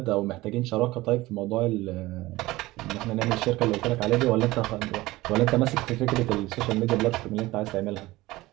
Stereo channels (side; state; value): left; quieter; 18.9 dB